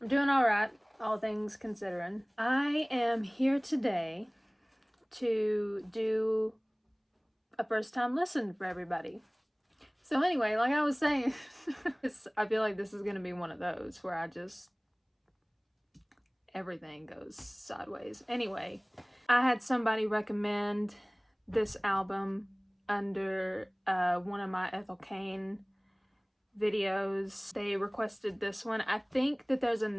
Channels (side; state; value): both; identical; correlation 1.00